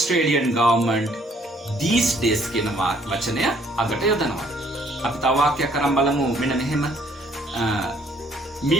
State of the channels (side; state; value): both; normal; correlation 0.63